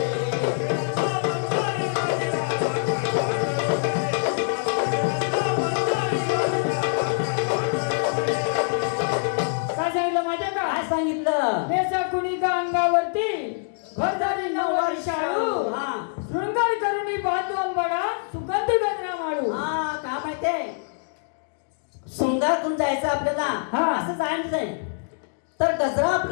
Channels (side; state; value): right; silent; digital silence